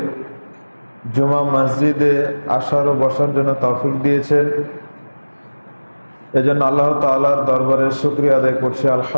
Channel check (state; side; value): inverted; both; correlation -1.00